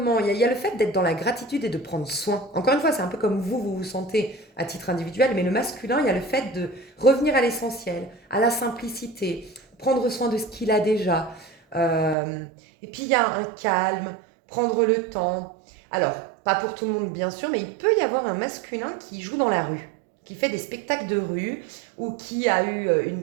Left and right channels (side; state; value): left; drops out; at 12.2 s